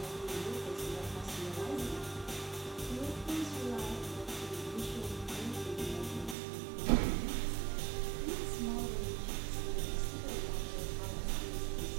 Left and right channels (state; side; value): drops out; left; at 6.4 s